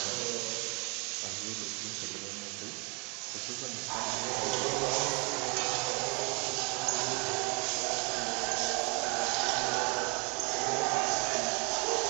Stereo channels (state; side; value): quieter; left; 32.3 dB